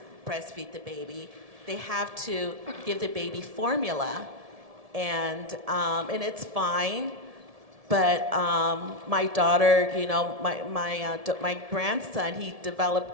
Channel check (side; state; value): left; late; 1.7 ms